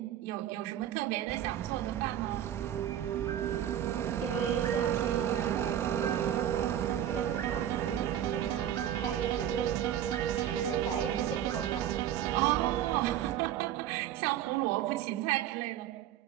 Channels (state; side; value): quieter; left; 11.0 dB